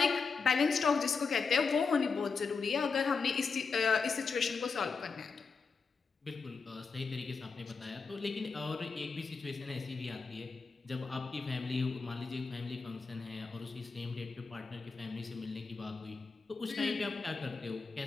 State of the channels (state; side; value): quieter; right; 4.9 dB